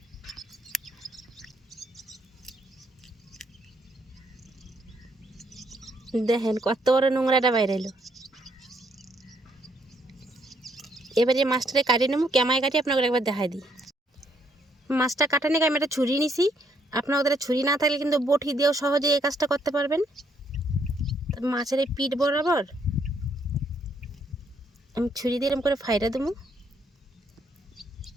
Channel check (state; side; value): normal; both; correlation 0.71